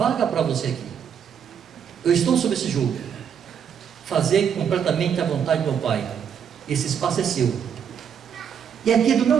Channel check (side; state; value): left; quieter; 7.9 dB